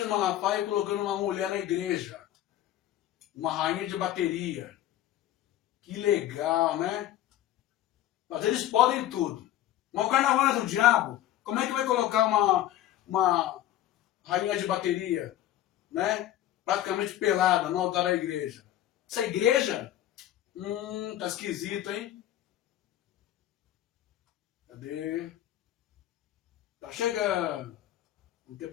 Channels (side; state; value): right; quieter; 12.9 dB